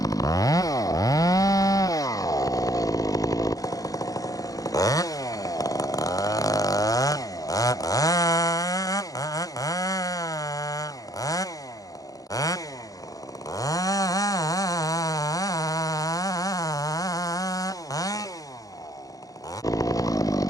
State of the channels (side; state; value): right; late; 0.17 ms